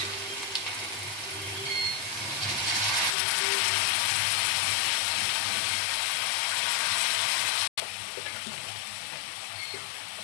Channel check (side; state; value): right; drops out; at 3.2 s